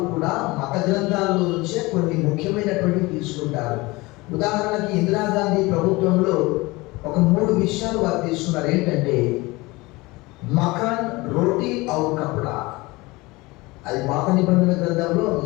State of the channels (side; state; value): right; quieter; 22.5 dB